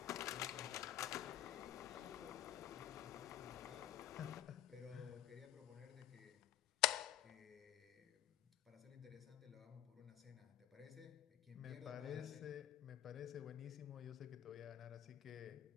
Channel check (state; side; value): quieter; right; 12.7 dB